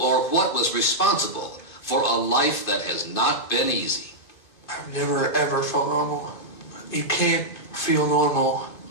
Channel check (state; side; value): late; right; 2.5 ms